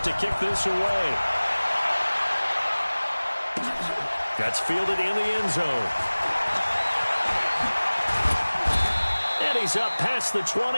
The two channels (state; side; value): inverted; both; correlation -1.00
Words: to kick this away. That's fielded in the end zone. And he's up past the